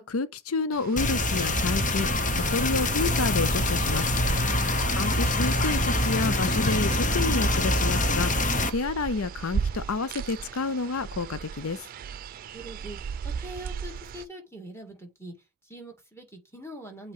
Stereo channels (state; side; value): normal; both; correlation 0.36